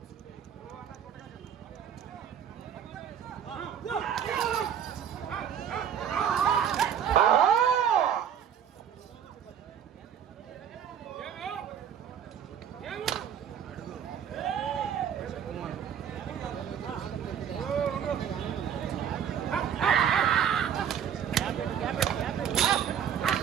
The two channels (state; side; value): quieter; left; 8.7 dB